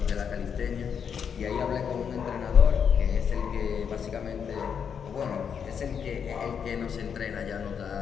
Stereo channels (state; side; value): quieter; right; 7.2 dB